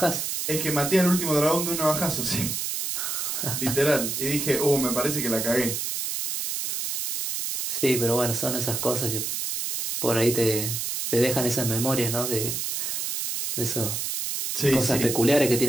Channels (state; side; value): noise; right; hiss, 2 dB below the sound